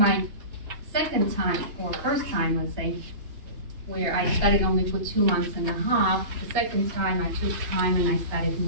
second time, or first time, let's say, where I studied only for 2 months and a half, the second time I took time and I studied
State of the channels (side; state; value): left; late; 2.9 ms